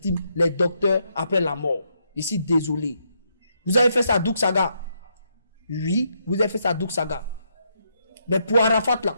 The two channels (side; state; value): both; inverted; correlation -0.77